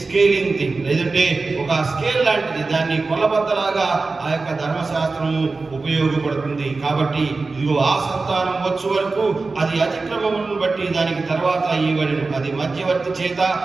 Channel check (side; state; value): left; quieter; 3.8 dB